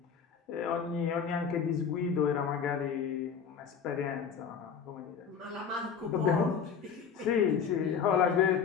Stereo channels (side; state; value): right; quieter; 6.7 dB